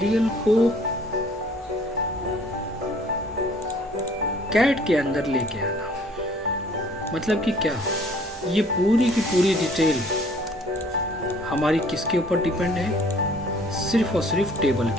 को कैड के अंदर लेके आना। मतलब कि क्या, ये पूरी की पूरी डिटेल हमारी किसके ऊपर डिपेंड है, सिर्फ और सिर्फ टेबल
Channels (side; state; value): both; normal; correlation 0.56